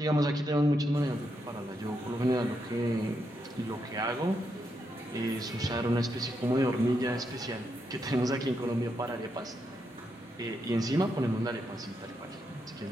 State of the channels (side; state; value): both; normal; correlation 0.81